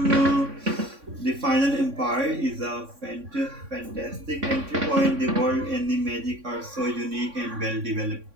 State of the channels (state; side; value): late; left; 3.6 ms